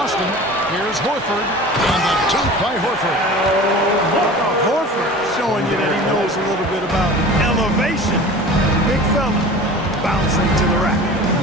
Here's Horford. And the dunk by Horford. Horford showing you that he knows a little bit about elevation. Big fella bouncing to the rack.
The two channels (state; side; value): normal; both; correlation 0.38